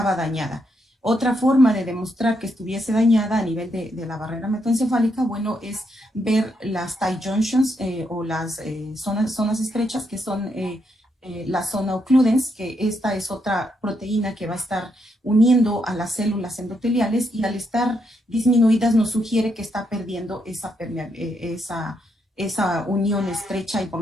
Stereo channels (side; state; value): both; normal; correlation 0.78